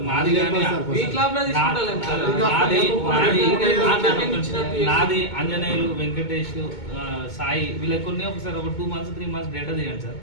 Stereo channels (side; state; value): right; late; 2.2 ms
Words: నాది కానీ వీక్ లాబ్ లో తీసుకుంటాం సార్. నాది అంజనేయులు, వెంకటేష్, సాయి వీళ్ళకి కొన్ని ఒకసారి ఒక 2 months 3 months డేటా తీయండి సార్.